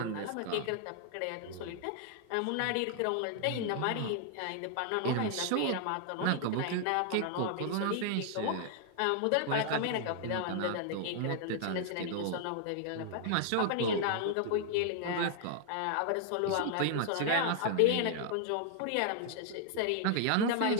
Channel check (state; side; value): different; both; correlation 0.00